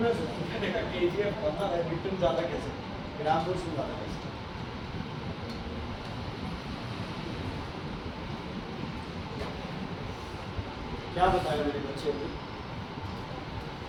सोचा केजीएफ पढ़ना है, न्यूटन ज़्यादा कैसे, ग्राम फोर्स में ज़्यादा कैसे। क्या बताया मेरे बच्चे को,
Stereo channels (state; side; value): identical; both; correlation 1.00